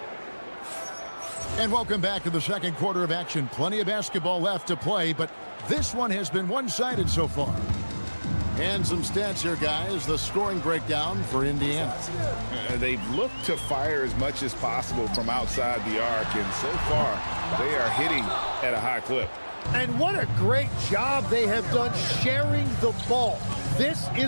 And welcome back to the second quarter of action. Plenty of basketball left to play, but this one has been one-sided so far. And some stats here, guys. The scoring breakdown for Indiana. They've looked to fire as much as possible from outside the arc, and so far, they are hitting at a high clip. And what a great job they have done sharing the ball. This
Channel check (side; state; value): both; inverted; correlation -1.00